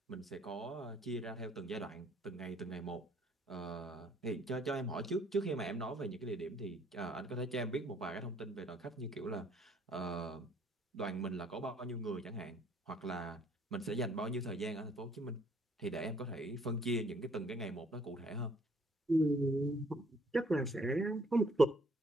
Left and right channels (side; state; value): both; normal; correlation 0.62